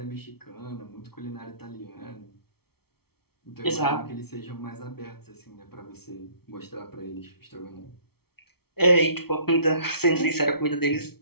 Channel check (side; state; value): right; late; 0.95 ms